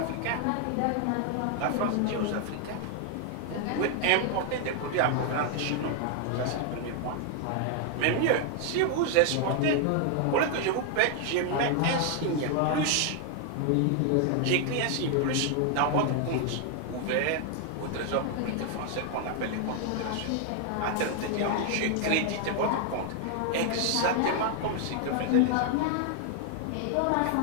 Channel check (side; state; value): both; different; correlation 0.00